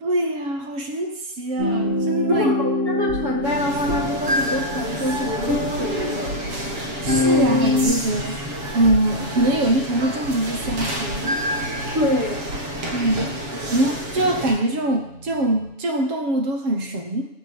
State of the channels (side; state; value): left; late; 7.2 ms